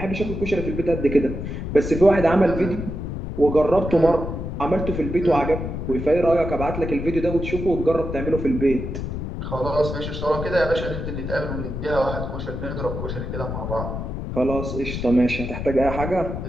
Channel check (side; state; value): left; noise; rumble, 5 dB below the sound